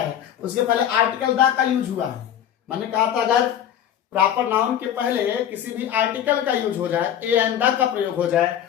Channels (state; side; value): quieter; right; 10.1 dB